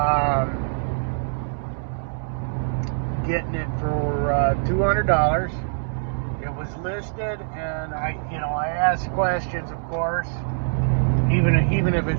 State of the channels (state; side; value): silent; left; digital silence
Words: Getting it for $200. It was listed, and I asked questions, of course. Even if